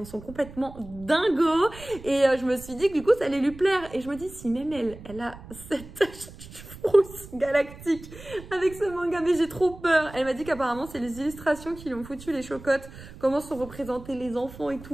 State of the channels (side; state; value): right; noise; rumble, 16 dB below the sound